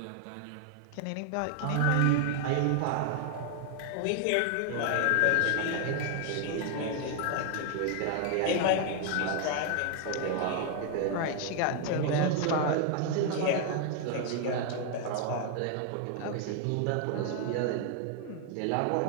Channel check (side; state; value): both; different; correlation 0.00